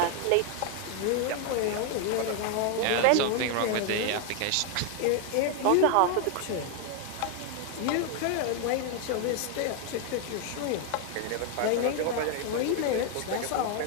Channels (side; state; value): both; different; correlation 0.00